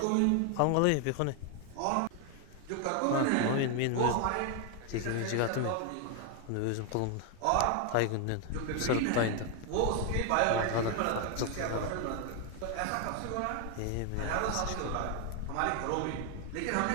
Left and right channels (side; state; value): both; different; correlation 0.00